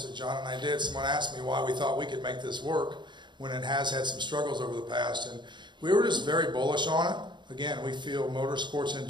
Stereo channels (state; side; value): late; left; 0.22 ms